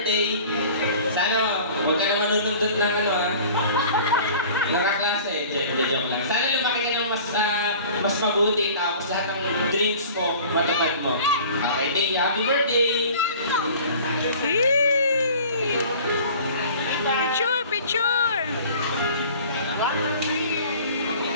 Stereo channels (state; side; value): inverted; both; correlation -0.45